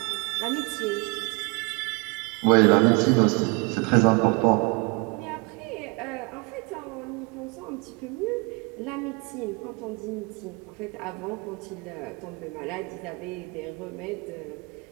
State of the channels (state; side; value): quieter; left; 28.6 dB